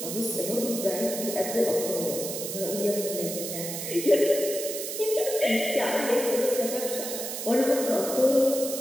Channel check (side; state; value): right; noise; hiss, 6 dB below the sound